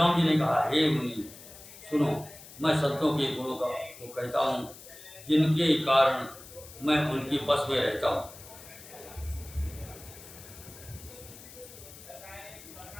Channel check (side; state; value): left; noise; hiss, 17 dB below the sound